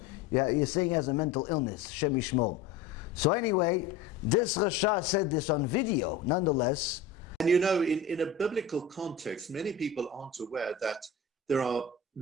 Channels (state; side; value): quieter; right; 5.0 dB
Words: you're saying he has a mental illness. Shem Yishmor. So anyway, this Rasha said this on video, nonetheless. And you know, in a biblical context, many people aren't aware that there are